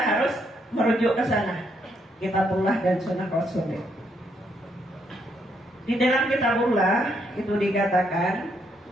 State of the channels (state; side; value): normal; both; correlation 0.74